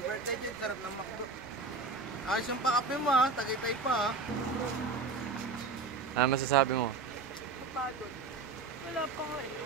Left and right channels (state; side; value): quieter; left; 4.0 dB